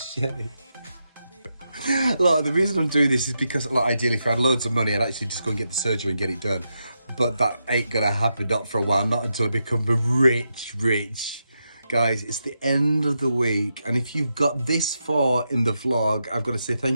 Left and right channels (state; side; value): inverted; both; correlation -0.85